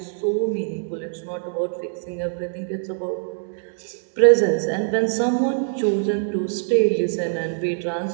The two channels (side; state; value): left; silent; digital silence